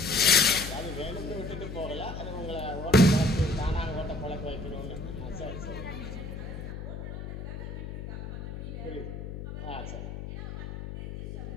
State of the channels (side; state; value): left; noise; hum, 7 dB below the sound